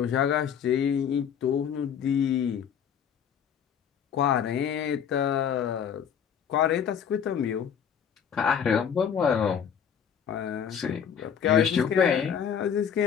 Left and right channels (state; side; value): quieter; right; 7.9 dB